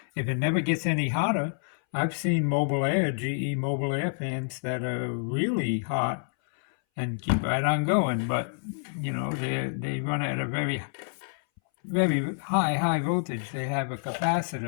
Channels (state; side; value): silent; right; 59 dB below the other